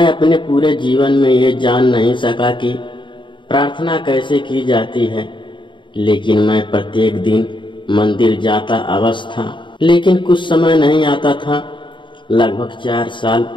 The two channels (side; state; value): right; late; 0.23 ms